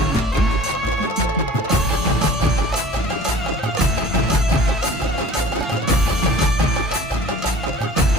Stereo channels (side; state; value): both; normal; correlation 0.45